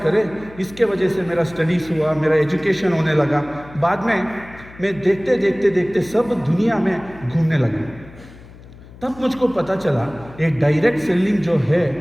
इसके वजह से मेरा स्टडीज़ हुआ, मेरा एजुकेशन होने लगा। बाद में मैं देखते सब दुनिया में घूमने लगा। तब मुझको पता चला एक डायरेक्ट सेलिंग जो है,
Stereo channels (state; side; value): noise; left; hum, 20 dB below the sound